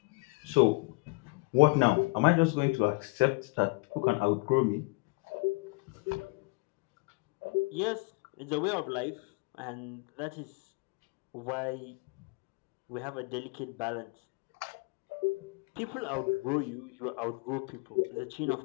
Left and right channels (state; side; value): quieter; right; 28.3 dB